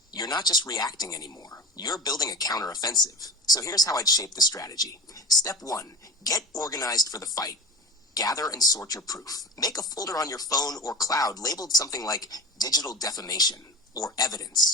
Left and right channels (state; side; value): normal; both; correlation 0.30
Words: You're not just reacting anymore. You're building a counteroffensive. So here's how I'd shape the strategy. Step 1, get organized for the fight. Gather and sort your proof. Make a folder on your phone or cloud labeled something like digital defamation or